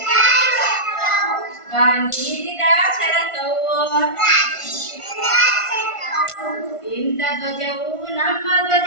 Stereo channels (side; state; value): right; late; 1.5 ms